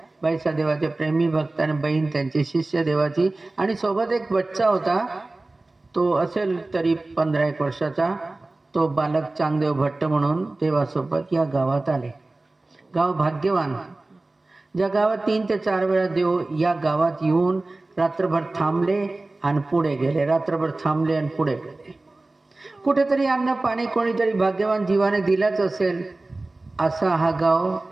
बाईसा देवाचे प्रेमी भक्त आणि बहीण त्यांची शिष्य देवाची, आणि सोबत एक बच्चा होता. तो असेल तरी 15-1 वर्षाचा. तो बालक चांगदेव भट्ट म्हणून देवासोबत या गावात आले. गाव भाग्यवान. ज्या गावात 3 ते 4 वेळा देव या गावात येऊन रात्रभर थांबले आणि पुढे गेले, रात्रभर थांबले आणि पुढे गेले. कुठेतरी अन्न पाणी कोणीतरी भाग्यवान जीवाने दिलाच असेल असा हा गाव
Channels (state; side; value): quieter; left; 3.0 dB